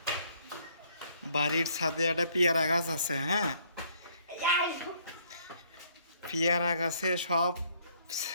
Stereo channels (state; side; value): inverted; both; correlation -0.64